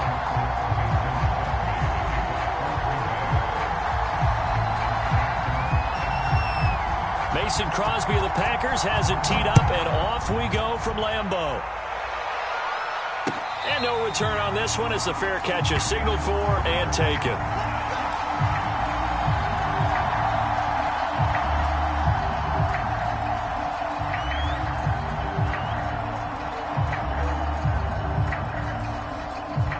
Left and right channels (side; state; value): both; identical; correlation 1.00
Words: Mason Crosby of the Packers has it teed up, and off we go from Lambeau. And no return on this one as the fair catch is signaled for and taken.